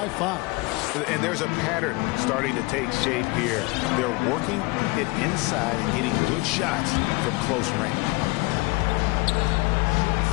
5. And there's a pattern starting to take shape here. They're working it inside and hitting good shots from close range.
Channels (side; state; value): right; quieter; 25.0 dB